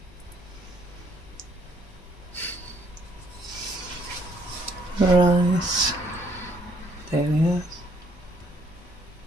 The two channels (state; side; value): normal; both; correlation 0.66